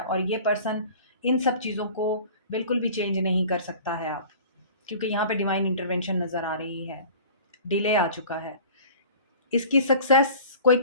ये पर्सन इन सब चीज़ों को बिल्कुल भी चेंज नहीं कर सकता है आप, क्योंकि यहाँ पे डिवाइन इंटरवेंशन नज़र आ रही है। डिले आ चुका है। इसकी सक्सेस, कोई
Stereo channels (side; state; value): both; inverted; correlation -0.43